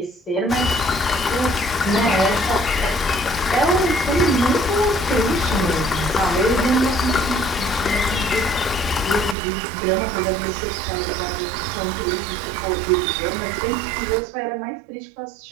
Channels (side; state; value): left; drops out; at 9.3 s